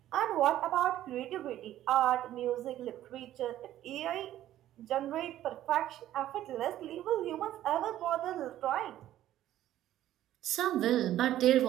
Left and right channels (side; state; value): left; quieter; 13.0 dB